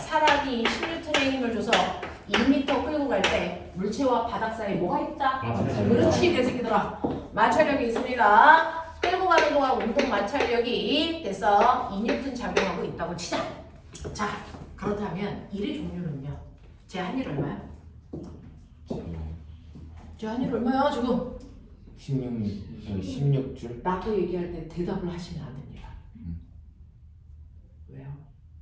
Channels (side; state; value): both; identical; correlation 1.00